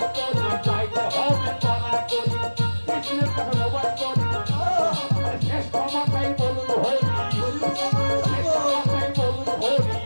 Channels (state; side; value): inverted; both; correlation -1.00